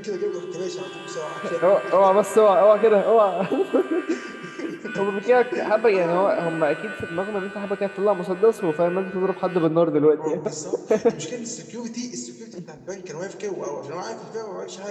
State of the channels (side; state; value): both; identical; correlation 1.00